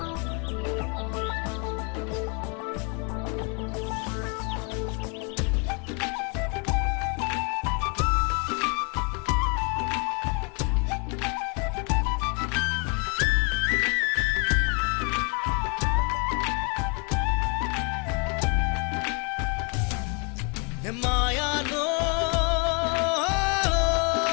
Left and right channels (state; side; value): quieter; right; 34.9 dB